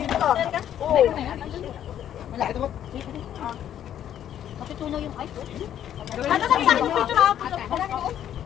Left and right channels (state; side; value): quieter; right; 10.5 dB